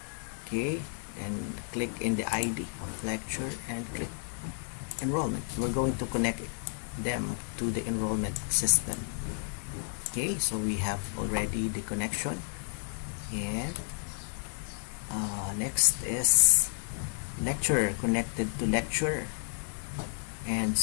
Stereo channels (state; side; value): silent; right; 56 dB below the other